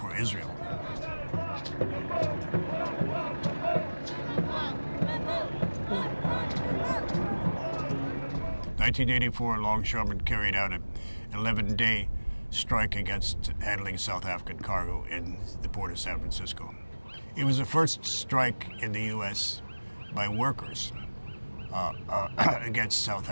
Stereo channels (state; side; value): inverted; both; correlation -1.00